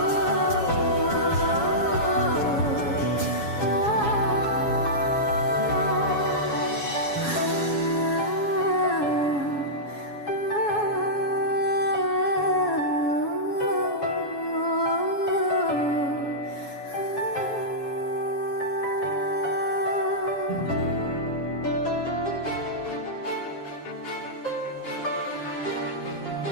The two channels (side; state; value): right; late; 7.2 ms